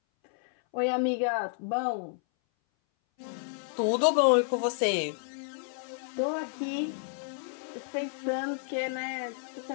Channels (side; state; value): right; silent; 57 dB below the other